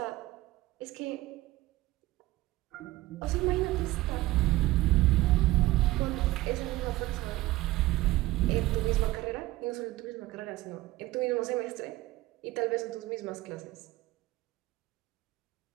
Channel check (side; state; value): left; quieter; 18.1 dB